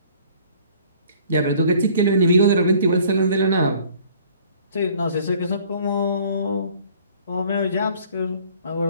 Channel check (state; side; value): inverted; both; correlation -0.54